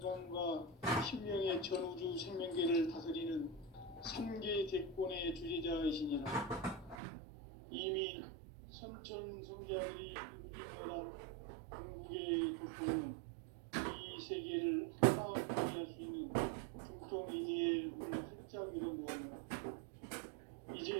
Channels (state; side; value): drops out; left; at 7.0 s